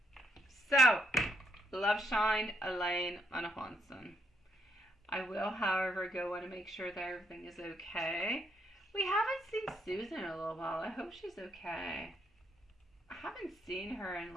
So, Love Shine, Elaine, and Johnson. I will, however, go and make sure that everything is okay. We haven't seen Susan in a little while. I hope she's okay. I haven't seen her in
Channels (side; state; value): both; normal; correlation 0.74